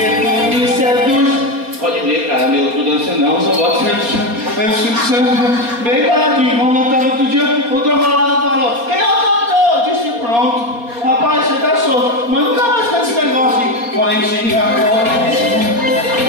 tu me seduz. Pode ver, cara, meu, tu dança não, só boto bem paradinho, vamos cantar outro dia, o trombonado falou, quem é o cantor? Eu disse, pronto. Rapaz, você tá solto, mas nunca mais canta esse negócio de Valentina,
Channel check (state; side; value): late; left; 4.2 ms